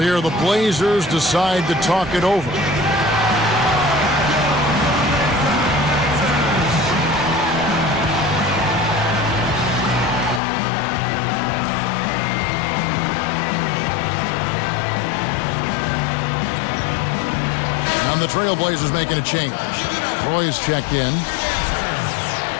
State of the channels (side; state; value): right; drops out; at 10.4 s